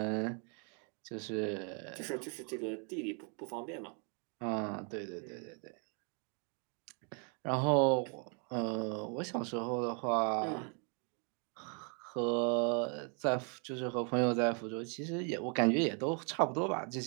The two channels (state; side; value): quieter; left; 38.7 dB